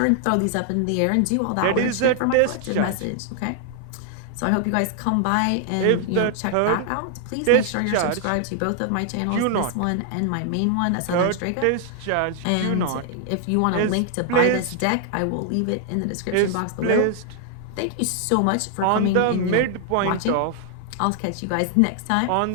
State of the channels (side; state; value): both; different; correlation 0.00